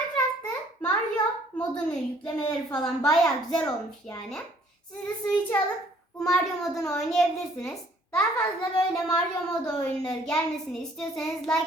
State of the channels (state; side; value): normal; both; correlation 0.60